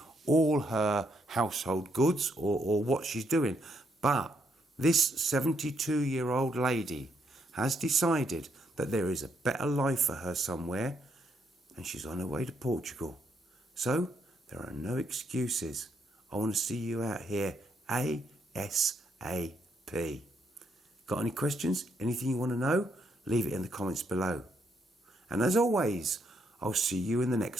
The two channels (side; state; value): both; normal; correlation 0.75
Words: all her household goods or what she's doing. But this 72-year-old lady has decided that there is a better life for her somewhere, and she's on her way to Portugal. So, there are no excuses. I want to see you out here ASAP. Got any questions? Anything you want to know? Leave it in the comments below. And as always, I'll see you in the